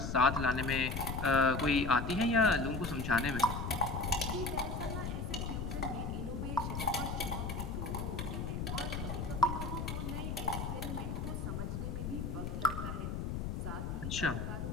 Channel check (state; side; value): noise; left; rumble, 3 dB below the sound